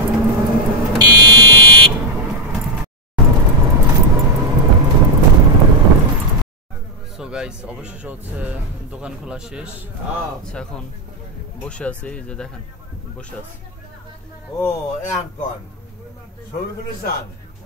সো গাইস অবশেষে হচ্ছে দোকান খোলা শেষ। আচ্ছা এখন বসে আছি, এই যে দেখেন বসে আছি। ও এখন ছবিগুলো চান,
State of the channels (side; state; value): both; normal; correlation 0.01